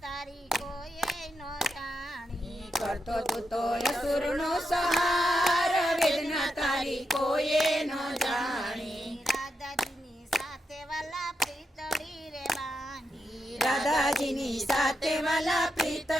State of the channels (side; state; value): both; normal; correlation 0.85